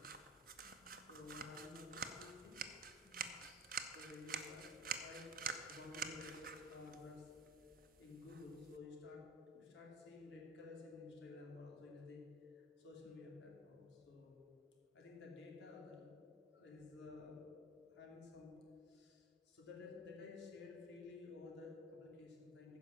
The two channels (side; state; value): both; normal; correlation 0.35